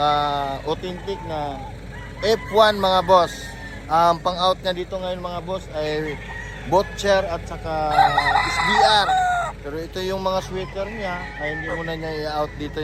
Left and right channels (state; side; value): identical; both; correlation 1.00